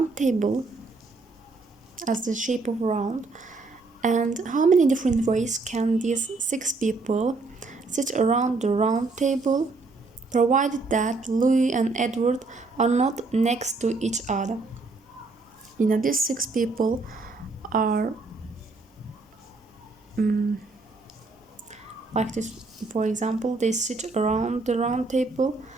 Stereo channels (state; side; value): quieter; left; 3.7 dB